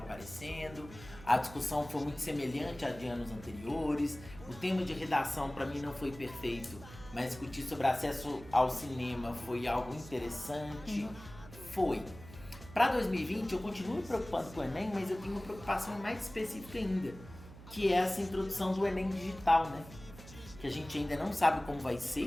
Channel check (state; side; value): noise; right; hum, 16 dB below the sound